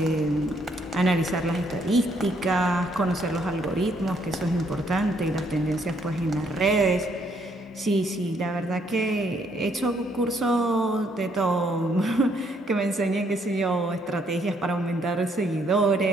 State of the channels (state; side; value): normal; both; correlation 0.70